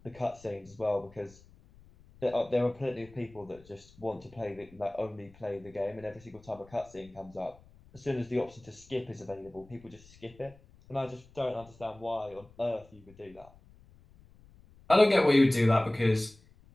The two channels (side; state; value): left; noise; rumble, 25 dB below the sound